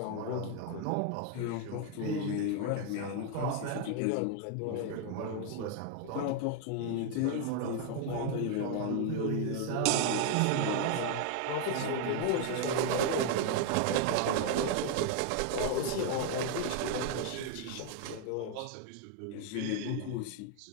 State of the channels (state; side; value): different; both; correlation 0.01